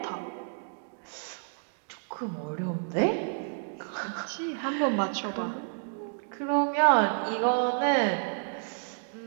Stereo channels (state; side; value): silent; left; digital silence